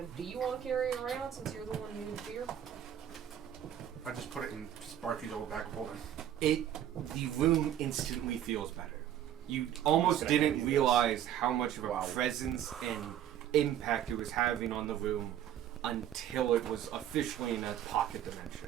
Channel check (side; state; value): left; quieter; 10.7 dB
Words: do you want to carry it around since you're the one who used fear? I just put it in Sparky's old bag of holding. The room instantly feels better. You almost Gonna hand didn't you this. realize how much of a Wow. presence and impact it was having on the room until it was officially in a pocket